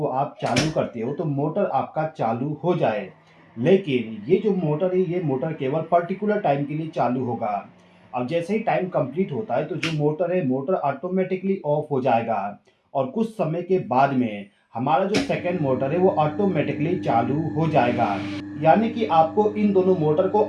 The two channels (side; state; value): both; identical; correlation 1.00